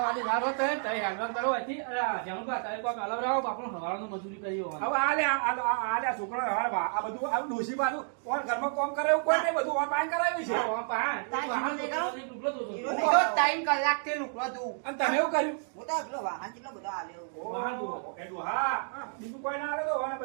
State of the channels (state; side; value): silent; left; 57 dB below the other